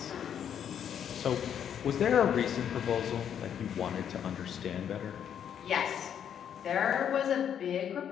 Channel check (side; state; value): right; quieter; 8.9 dB